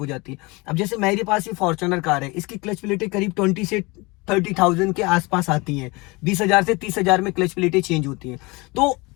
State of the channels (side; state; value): right; quieter; 25.0 dB